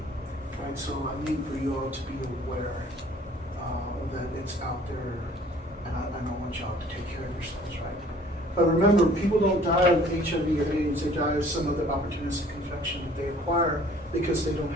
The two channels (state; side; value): normal; both; correlation 0.54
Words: Right, so I need for you all to be aware that it's out there, and I don't want y'all to take care of yourselves, right? But remember, people don't die of HIV or AIDS; they die of some other opportunistic infection that they acquire because they don't